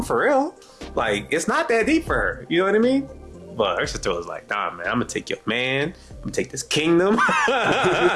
for real. Like, it's not that deep for her. You know what I mean? But her sister was like, nah, man, I'm going to take your man. I'm going to take this kingdom.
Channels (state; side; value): identical; both; correlation 1.00